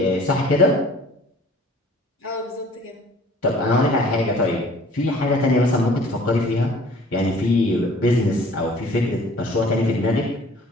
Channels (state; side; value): normal; both; correlation 0.51